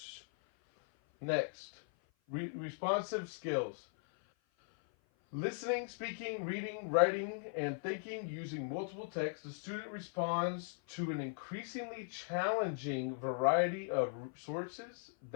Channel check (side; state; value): right; silent; 52 dB below the other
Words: Next, responsive skills. Listening, speaking, reading, writing, and thinking using multiple texts, the student responds to an increasingly challenging variety of sources